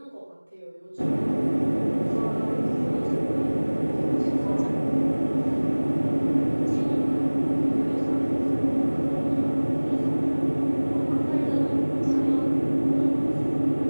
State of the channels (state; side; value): inverted; both; correlation -1.00